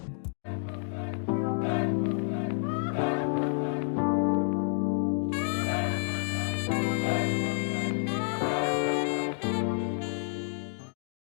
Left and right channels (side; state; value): right; silent; 58 dB below the other